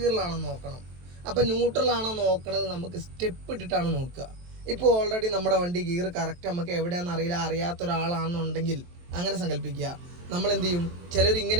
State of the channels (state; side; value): late; left; 23 ms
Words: ഗിയറിലാണോ നോക്കണം. അപ്പം ന്യൂട്രലാണോ നോക്കണത് നമുക്ക് സ്റ്റെപ്പ് ഇട്ടിട്ടാണ് നോക്കുക. ഇപ്പോൾ ഓൾറെഡി നമ്മുടെ വണ്ടി ഗിയർ കറക്റ്റ് നമുക്ക് എവിടെയാണെന്ന് അറിയില്ല, അറിയാത്ത ഒരാളാണെന്നുണ്ടെങ്കിൽ അങ്ങനെ സങ്കല്പിക്കുക. നമ്മൾ എന്ത് ചെയ്യും, ചിലർ